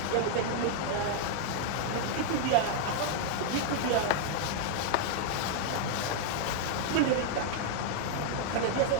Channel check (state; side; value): different; both; correlation 0.00